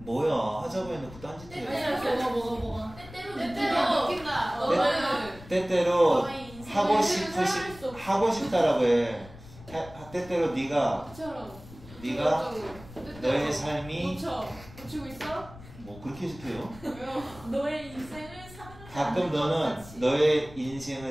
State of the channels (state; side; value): noise; left; rumble, 18 dB below the sound